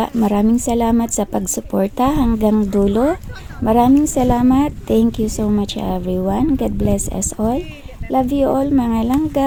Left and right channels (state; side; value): identical; both; correlation 1.00